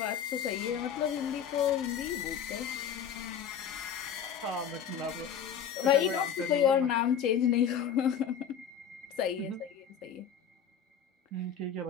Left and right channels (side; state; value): right; quieter; 7.9 dB